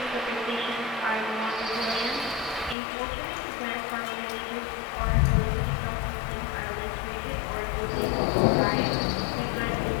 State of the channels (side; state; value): right; drops out; at 2.8 s